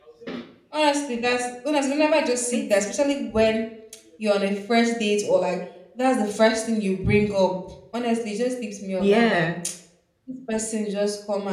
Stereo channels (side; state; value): both; identical; correlation 1.00